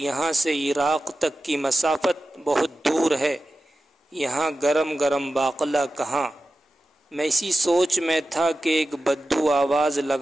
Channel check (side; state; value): both; normal; correlation 0.93